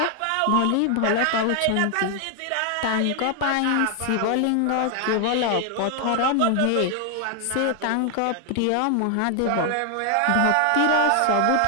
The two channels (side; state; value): both; different; correlation 0.00